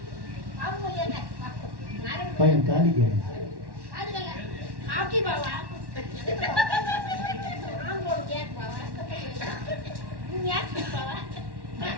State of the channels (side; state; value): left; late; 1.1 ms